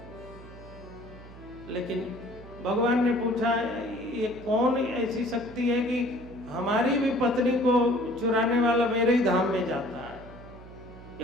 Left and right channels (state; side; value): noise; right; hum, 17 dB below the sound